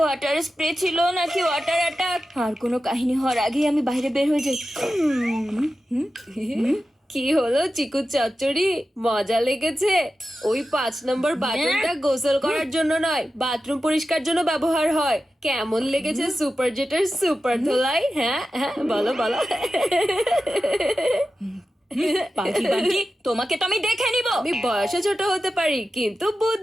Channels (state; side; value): normal; both; correlation 0.92